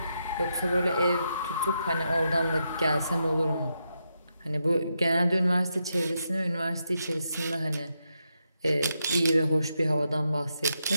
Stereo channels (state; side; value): inverted; both; correlation -0.83